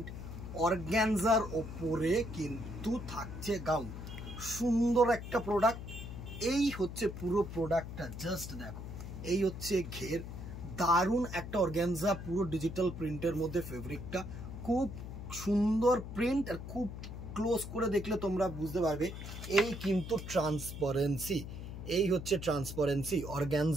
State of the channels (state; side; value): noise; left; hum, 9 dB below the sound